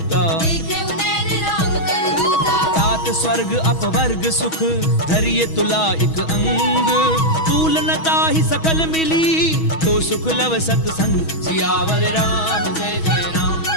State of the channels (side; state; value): right; late; 6.2 ms